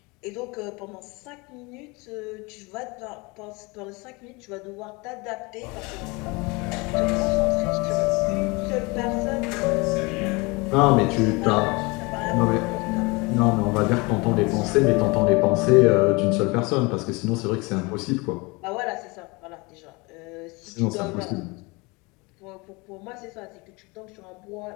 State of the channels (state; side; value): quieter; right; 26.5 dB